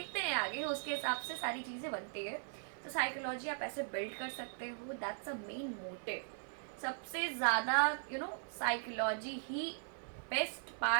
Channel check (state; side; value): silent; left; 51 dB below the other